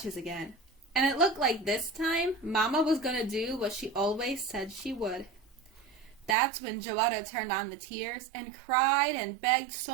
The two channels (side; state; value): left; drops out; at 6.4 s